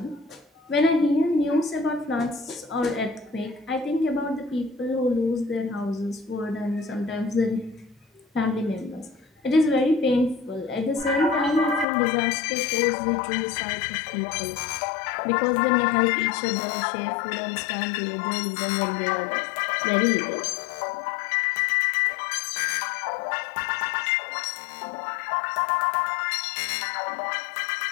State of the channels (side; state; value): right; drops out; at 11.9 s